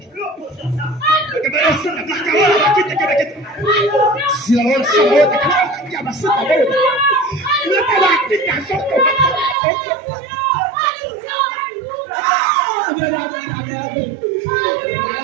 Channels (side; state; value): left; drops out; at 9.6 s